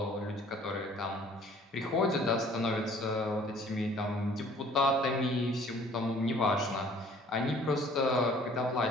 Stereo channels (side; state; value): both; normal; correlation 0.54